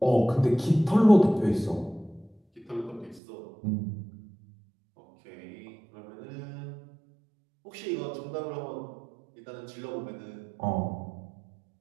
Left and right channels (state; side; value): drops out; left; at 3.2 s